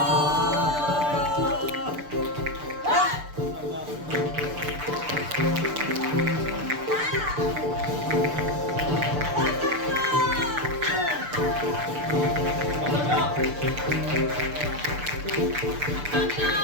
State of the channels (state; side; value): late; left; 6.8 ms